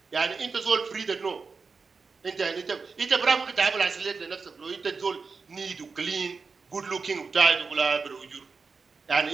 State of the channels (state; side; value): quieter; left; 4.8 dB